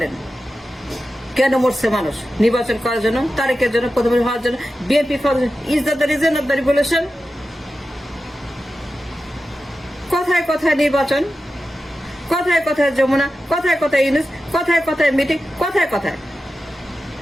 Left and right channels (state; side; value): normal; both; correlation 0.92